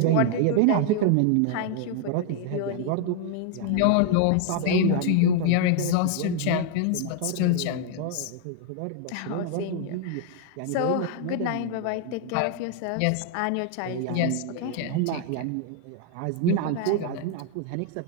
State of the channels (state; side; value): different; both; correlation 0.00